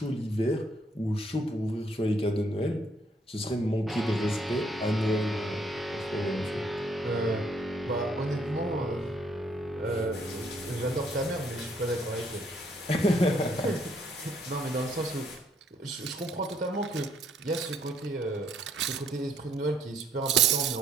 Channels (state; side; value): normal; both; correlation 0.68